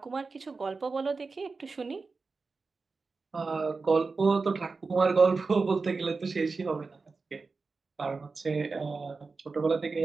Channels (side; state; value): left; quieter; 4.2 dB